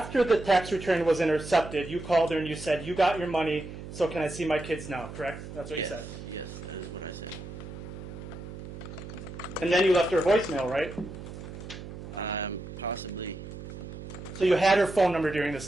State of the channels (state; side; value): noise; right; hum, 11 dB below the sound